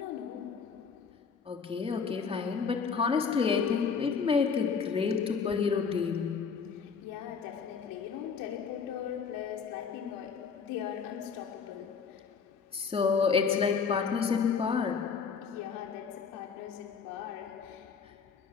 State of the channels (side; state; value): right; quieter; 5.9 dB